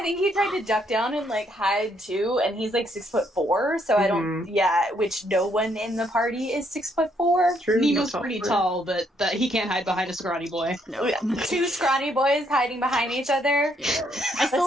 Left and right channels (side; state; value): both; normal; correlation 0.72